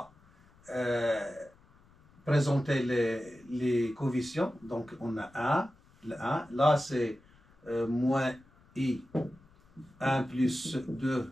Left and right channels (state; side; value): noise; left; rumble, 29 dB below the sound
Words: présenter les coefficients. Donc, on a 1, le 1. Là, c'est moins I, 1 plus 2